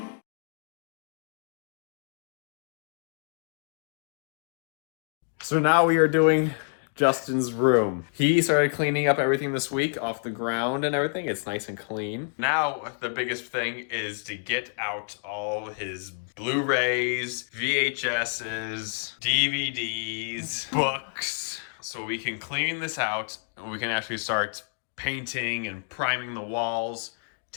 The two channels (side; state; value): right; silent; 59 dB below the other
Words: So now we are doing Justin's room. He started cleaning up everything this week off the ground and everything. It's nice and clean. Now the biggest thing is to get out all his Blu-rays, VHSs, DVDs, books, so we can clean this out and we can actually start painting and priming the walls,